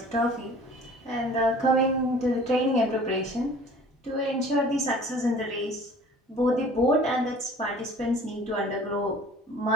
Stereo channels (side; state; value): both; normal; correlation 0.47